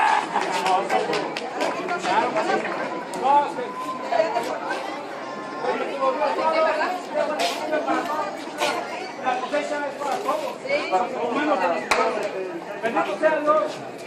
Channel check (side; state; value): both; identical; correlation 1.00